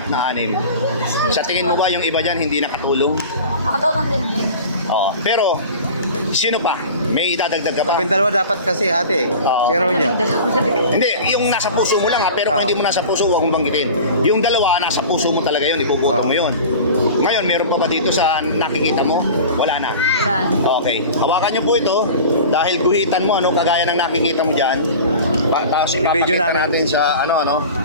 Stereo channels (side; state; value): both; inverted; correlation -0.36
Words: na 6. Sa tingin mo ba yung iba dyan hindi nakatulong? Nakatulong din din. Oo. Pero, sino pa? May idadagdag ka pa? Kami dalawa dapat kasi ate. Oo. Pero niya. Hindi, yung nasa puso mo lang ha, pero kung Oo. hindi mo nasa puso, huwag mong banggitin. Yung dalawa, nasa puso mo talaga yun, ipuputo mo yun. Ngayon, meron pa ba dito sa nakikita mo? Wala na. Wala. Okay. Hawakan niyo po ito dahil guhitan mo, ano, kagaya ng nakikita mo dyan. Tapos I-video ipapakita namin. natin sa